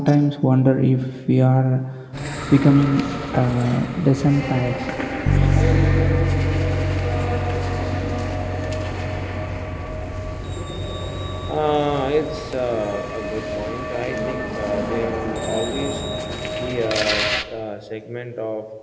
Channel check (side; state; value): both; identical; correlation 1.00